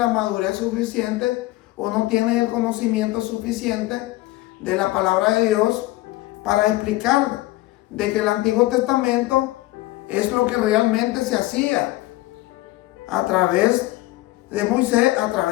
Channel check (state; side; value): quieter; right; 18.2 dB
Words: madurez suficiente o no tienen el conocimiento suficiente de la palabra de Dios para explicar de que el Antiguo Testamento es lo que realmente se hacía a través de Moisés, a